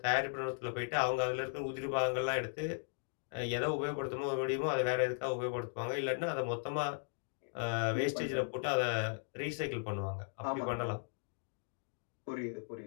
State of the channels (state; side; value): silent; right; digital silence